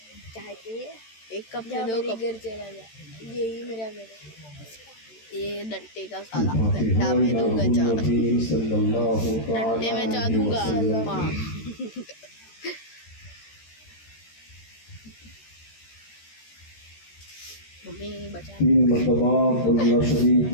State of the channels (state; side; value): late; right; 13 ms